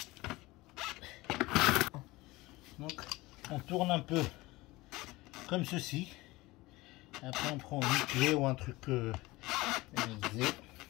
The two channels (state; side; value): quieter; right; 20.5 dB